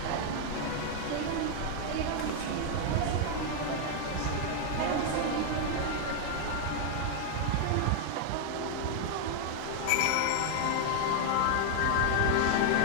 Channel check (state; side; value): different; both; correlation 0.00